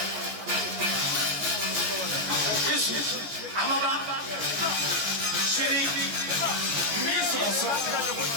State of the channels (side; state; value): left; late; 14 ms